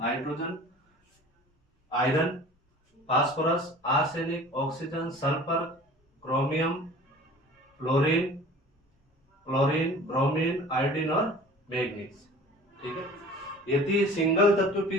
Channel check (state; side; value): normal; both; correlation 0.44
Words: iron, phosphorus, arsenic, oxygen, sulphur, chromium, fluorine, bromine, iodine और मैग्नीज, ठीक है। यदि सिंगल तत्व